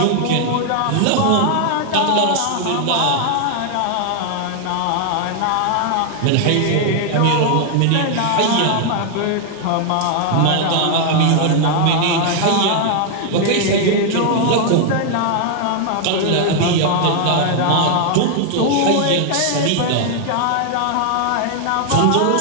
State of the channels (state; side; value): different; both; correlation 0.00